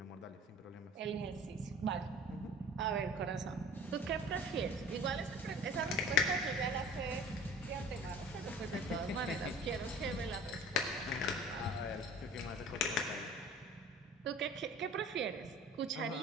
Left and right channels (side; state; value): both; normal; correlation 0.45